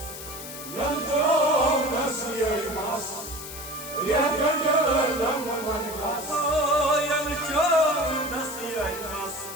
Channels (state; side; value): noise; left; hiss, 11 dB below the sound